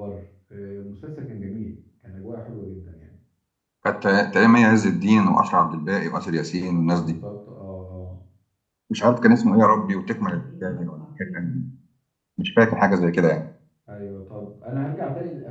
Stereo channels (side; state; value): both; identical; correlation 1.00